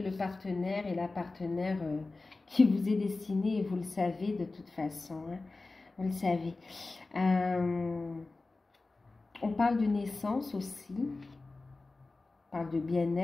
le partenaire et la partenaire qui vous est destinée et vous le savez de toute façon, hein. Vous le savez. On parle de naissance aussi. On parle de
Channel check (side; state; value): right; quieter; 3.4 dB